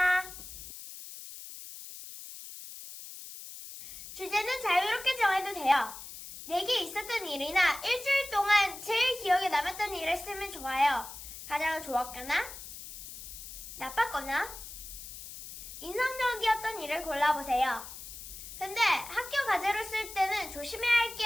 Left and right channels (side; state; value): left; noise; hiss, 12 dB below the sound